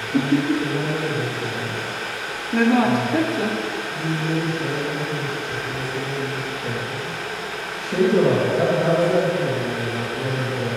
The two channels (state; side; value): identical; both; correlation 1.00